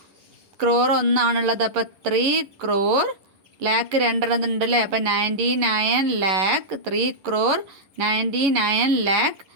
ക്രോർ ഒന്നാണുള്ളത്. അപ്പോൾ 3 crore, ലാക്ക് 2 ഉണ്ടല്ലേ. അപ്പോൾ 99 lakh, 3 crore 99 lakh,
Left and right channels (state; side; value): late; left; 11 ms